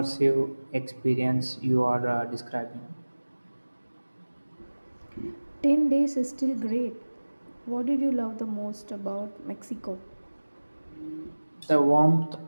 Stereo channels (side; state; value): both; inverted; correlation -1.00